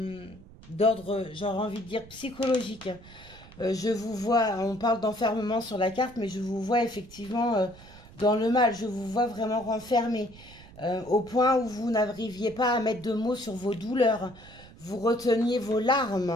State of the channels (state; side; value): noise; right; rumble, 20 dB below the sound